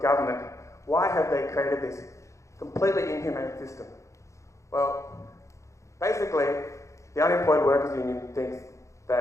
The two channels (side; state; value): right; late; 0.15 ms